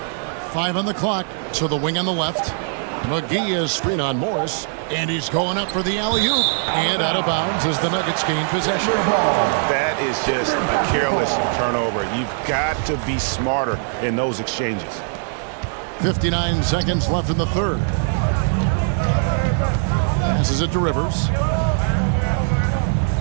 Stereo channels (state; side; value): silent; left; 65 dB below the other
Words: 5 on the clock. To the wing on the left. McGee is screen on Morris. And he's going up for the alley-oop. And out of bounds as the Nuggets gain possession. That is just a careless turnover. You've got to be smarter in those exchanges. 59 seconds left in the third. Passes it to Rivers.